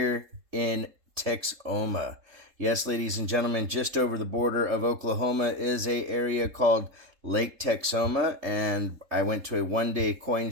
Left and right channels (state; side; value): late; left; 3.7 ms